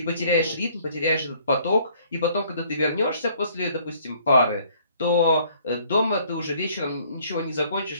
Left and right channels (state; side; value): inverted; both; correlation -0.60